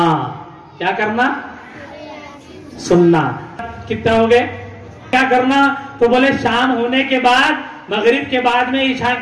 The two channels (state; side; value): identical; both; correlation 1.00